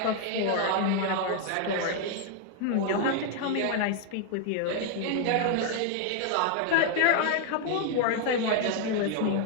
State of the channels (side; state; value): both; different; correlation 0.00